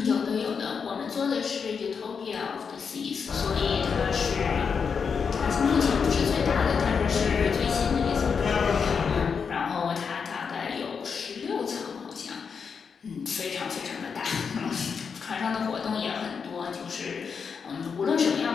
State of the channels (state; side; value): quieter; right; 6.0 dB